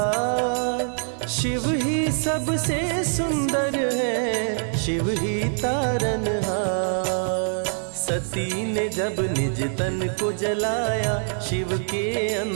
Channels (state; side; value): silent; left; digital silence